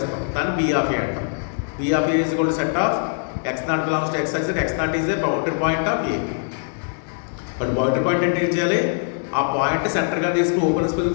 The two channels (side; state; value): right; silent; digital silence